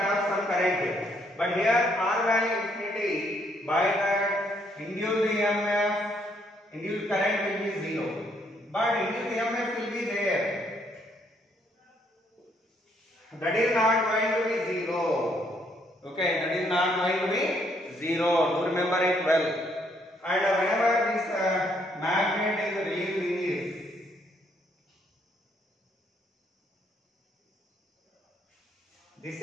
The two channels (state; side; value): normal; both; correlation 0.70